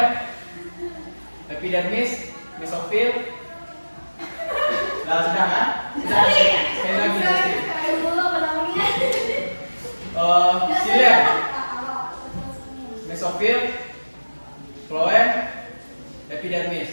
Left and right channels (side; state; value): both; inverted; correlation -1.00